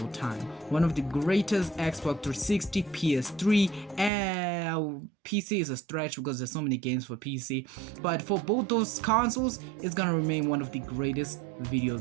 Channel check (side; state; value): left; drops out; at 4.1 s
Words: time. One of the greatest Xbox 360, PS3, and PC is a stretch because there's so many games for PC. But for both those consoles, it's gonna remain one of the greatest video